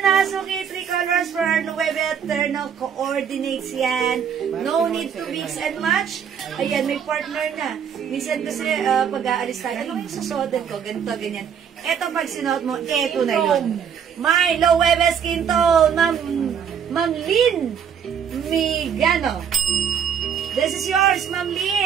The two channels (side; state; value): left; quieter; 7.8 dB